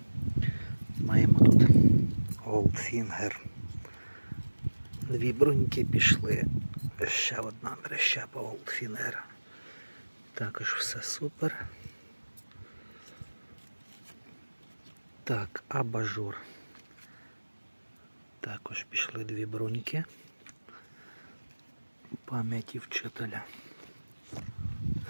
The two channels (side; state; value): both; inverted; correlation -1.00